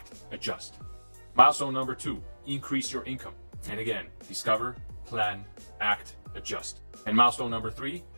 adjust. Milestone number 2, increase your income. And again, discover, plan, act, adjust. And milestone number 3,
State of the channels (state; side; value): inverted; both; correlation -1.00